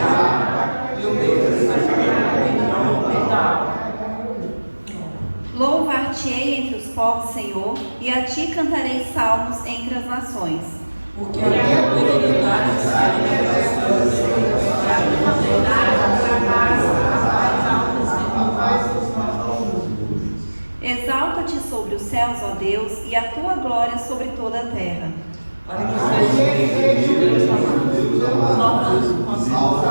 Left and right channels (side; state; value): both; inverted; correlation -1.00